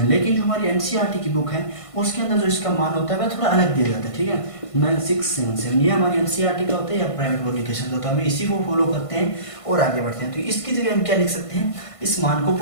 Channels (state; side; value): late; right; 1.5 ms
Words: लेकिन जो हमारी एनसीईआरटी की बुक है उसके अंदर जो इसका मान होता है वह थोड़ा अलग दिया जाता है, ठीक है, 9677। ये हमारी एनसीईआरटी का होता है या प्राइवेट पब्लिकेशन का, तो हमें इसी को फॉलो करते हैं और आगे बढ़ते हैं। तो इसकी जगह हम क्या लिख सकते हैं, इस मान को